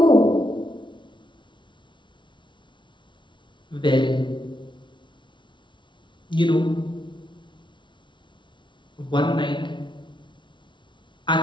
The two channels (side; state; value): right; late; 0.24 ms